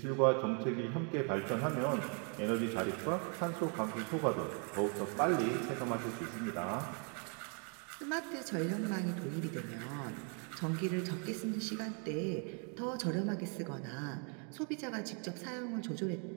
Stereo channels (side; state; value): left; quieter; 39.3 dB